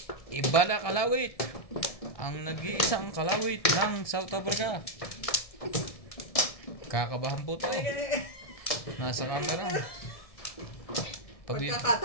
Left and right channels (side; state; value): right; late; 1.7 ms